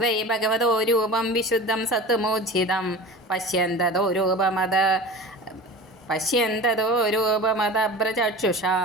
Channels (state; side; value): normal; both; correlation 0.34